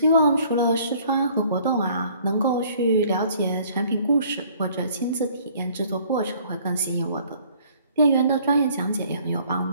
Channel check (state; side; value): inverted; both; correlation -0.58